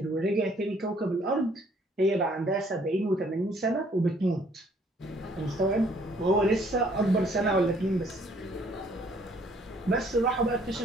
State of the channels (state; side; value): normal; both; correlation 0.62